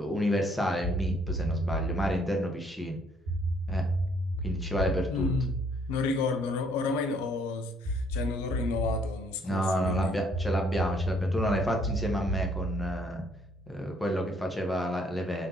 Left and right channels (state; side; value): normal; both; correlation 0.65